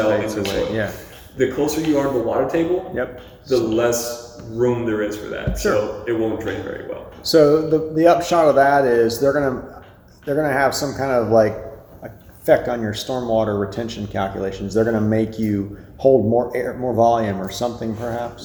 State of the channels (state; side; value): identical; both; correlation 1.00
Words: into the soil. Yeah. The closer you are to the water table, the less room there is for that. Sure. So it won't drain very well. So the upshot of that is they're gonna have some kind of like effect on your stormwater retention calculations. They're gonna make you hold more air, more volume, or something,